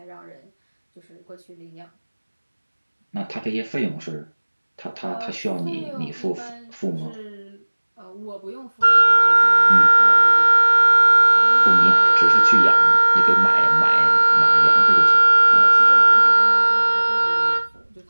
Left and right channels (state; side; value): inverted; both; correlation -1.00